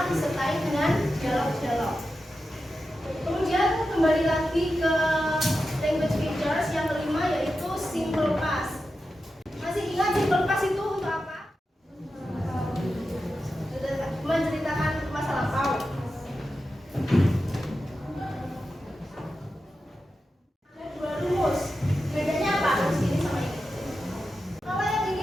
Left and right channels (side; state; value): both; normal; correlation 0.91